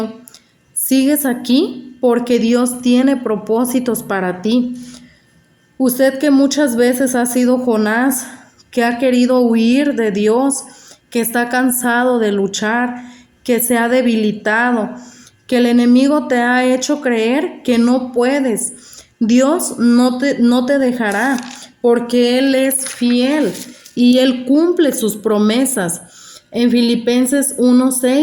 Sigues aquí porque Dios tiene propósitos para ti. Usted que muchas veces ha sido Jonás, que ha querido huir de Dios, que está cansado de luchar, que se ha debilitado, que el enemigo te ha hecho creer que no puedes. Dios no te dejará porque Él es fiel y Él cumple sus promesas. En Filipenses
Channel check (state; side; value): identical; both; correlation 1.00